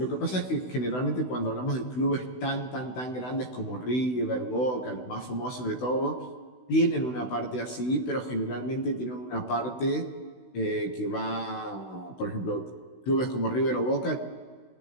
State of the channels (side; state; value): right; late; 16 ms